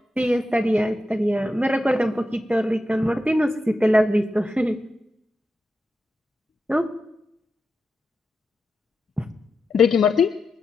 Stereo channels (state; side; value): normal; both; correlation 0.89